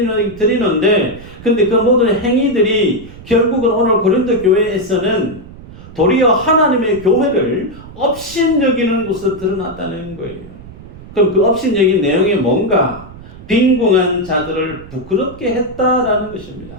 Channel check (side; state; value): right; noise; rumble, 17 dB below the sound